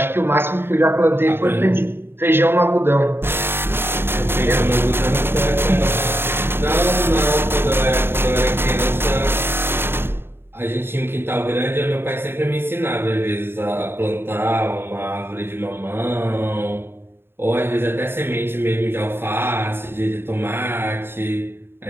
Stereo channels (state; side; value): late; left; 0.11 ms